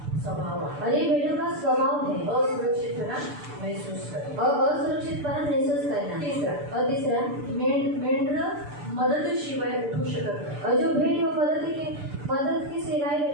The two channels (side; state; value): left; late; 6.8 ms